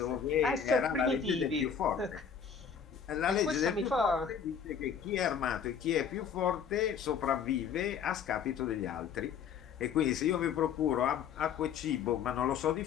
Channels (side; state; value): right; quieter; 7.3 dB